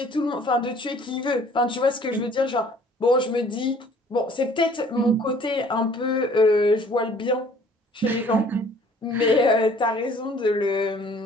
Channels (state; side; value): normal; both; correlation 0.55